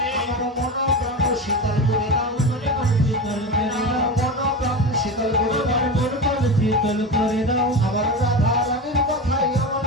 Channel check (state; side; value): normal; both; correlation 0.23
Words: শীতল করে দাও, আমার রাধা রানীর কথাই আমার